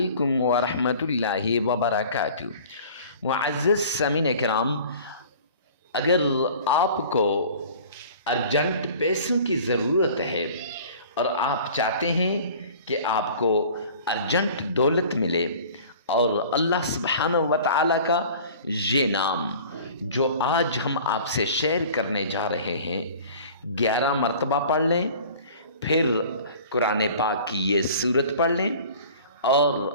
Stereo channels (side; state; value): both; inverted; correlation -0.45